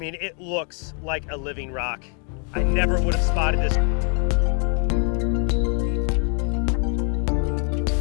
it looks like a living rock. I never would have spotted this.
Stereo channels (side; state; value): right; quieter; 39.9 dB